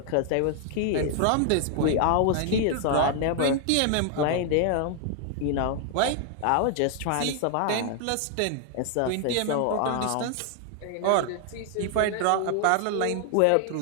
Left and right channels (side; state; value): both; different; correlation 0.00